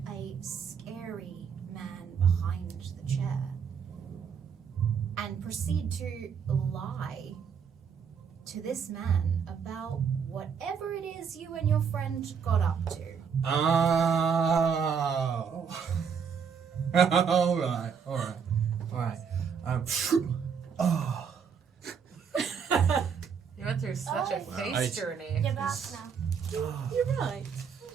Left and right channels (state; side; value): quieter; left; 6.7 dB